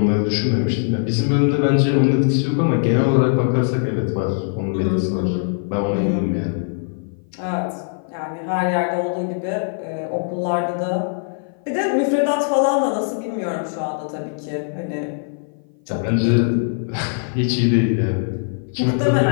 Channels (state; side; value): silent; right; 56 dB below the other